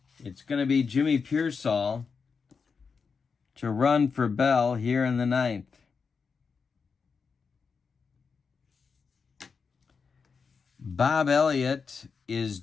It's going to be Jimmy Pearsall to run for Bell here in the ninth. Bob Elliott is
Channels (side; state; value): right; quieter; 5.4 dB